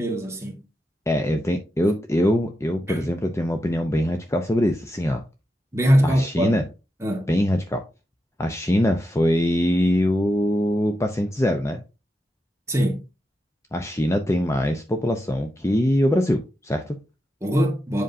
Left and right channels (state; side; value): normal; both; correlation 0.87